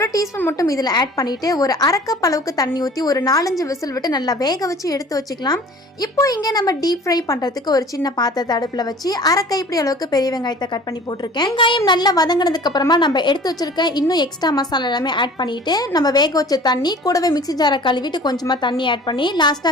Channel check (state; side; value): normal; both; correlation 0.46